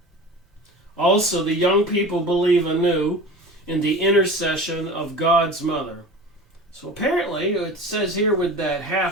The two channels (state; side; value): normal; both; correlation 0.36